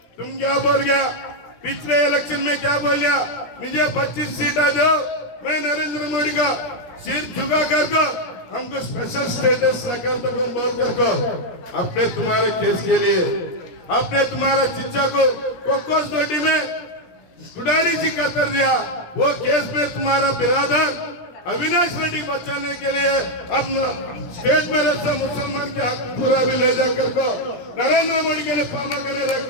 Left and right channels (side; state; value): right; late; 17 ms